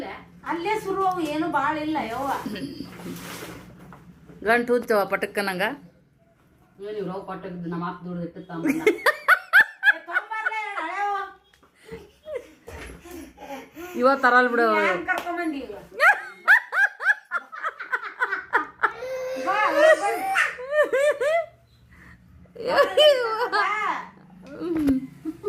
ಅಲ್ಲೇ ಶುರು ಅವು ಏನು ಬಾಳ ಇಲ್ಲ ಯವ್ವ ಗಂಟು ಹೂತವ ಪಟಕ್ಕನಂಗ ನೀವು ರೋಗ ಕೊಟ್ಟಿದ್ದು ನಮ್ಮ ಅಪ್ಪ ದುಡ್ದು ಇಟ್ಟು ಇವತ್ತು ತರಲ್ ಬಿಡು ಕರ್ಕೊಂಬಂದಿ ಈಗ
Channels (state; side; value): identical; both; correlation 1.00